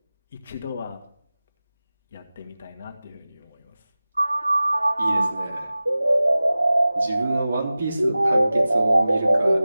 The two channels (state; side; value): inverted; both; correlation -0.97